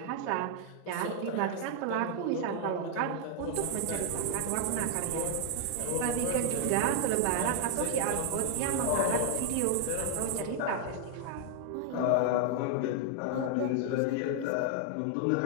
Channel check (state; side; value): different; both; correlation 0.00